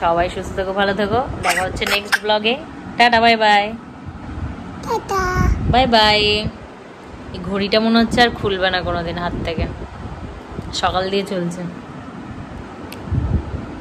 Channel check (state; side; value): identical; both; correlation 1.00